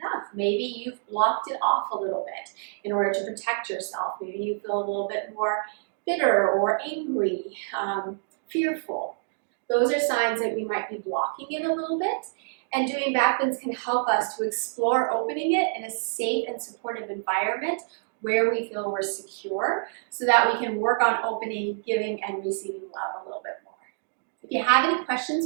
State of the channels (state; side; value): silent; left; digital silence